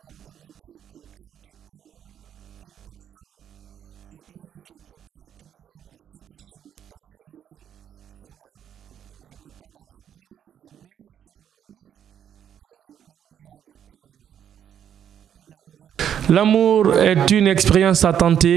de montrer que quand tu aimes une personne, je dis, je ne vais pas utiliser mon sucre sur le café, je ne mets pas dans la bouillie, je mets sur mon lit et m'amuser avec mon amoureux. L'amour est une expérience à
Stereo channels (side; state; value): left; quieter; 9.3 dB